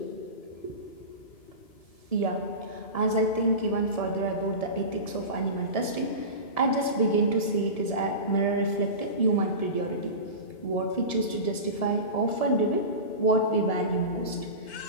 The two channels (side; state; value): right; late; 1.7 ms